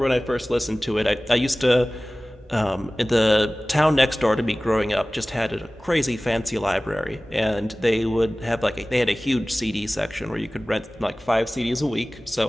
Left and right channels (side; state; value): both; normal; correlation 0.98